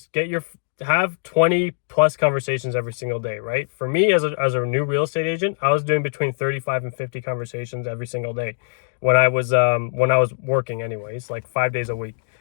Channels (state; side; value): silent; right; digital silence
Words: have 20 plus conversations every single day, right? For me as a new real estate agent, I was doing between 35 and 50 conversations every single day when I was working anyways, like 5 days a week.